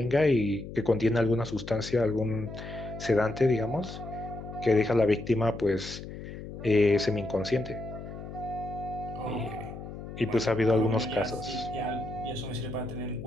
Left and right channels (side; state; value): left; noise; hum, 11 dB below the sound